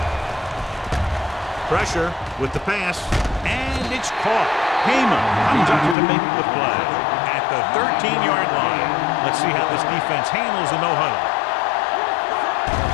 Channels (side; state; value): right; drops out; at 6.0 s